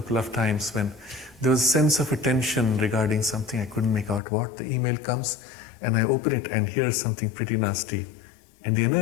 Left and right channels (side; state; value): right; drops out; at 4.2 s